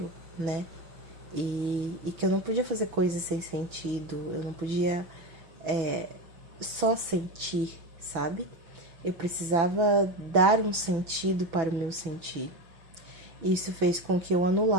né? E que eu não podia fazer coisas sem sentido, eu não podia só sentir, sabe? Eu precisava dar um sentido para o meu sentir. Isso fez com que eu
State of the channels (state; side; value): late; left; 6.0 ms